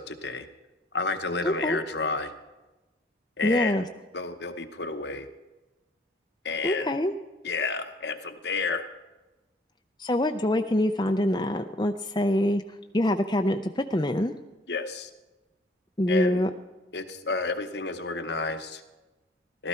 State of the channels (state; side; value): normal; both; correlation 0.58